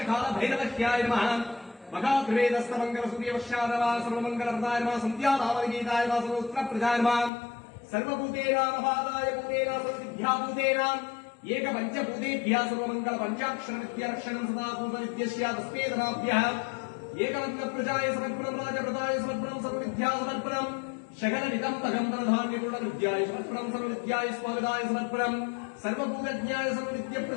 काल भैरवश्याय नमः महात्रिवेदस्तमंगल सूर्यवश्यादवा सर्वमंगल प्रदाय नमः संध्यानामगीताय नमः सर्वोत्तर प्रजाय नमः सर्वभूतेनामपादाय भूतेना सर्वविद्याभूतेना एक पंचभूतेभ्यः सर्वमंगल पंचाक्षर विद्यारक्षणं सदा पूर्वविद्यस्य तस्मेदनाभ्यः एकवन्न प्रजाय समर्पणं राजप्रदाय समर्पणं सर्वविद्या समर्पणं शकलनिदं तगंधरधान्यपूर्ण विद्याय समर्पणं सर्वविद्याय स्वागताय समर्पणं सर्वभूतज्ञाय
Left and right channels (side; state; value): right; drops out; at 7.3 s